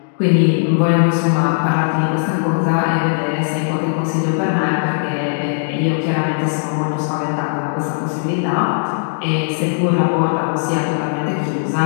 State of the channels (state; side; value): silent; right; digital silence